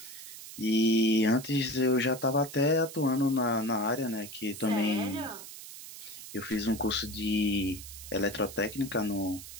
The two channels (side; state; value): right; noise; hiss, 13 dB below the sound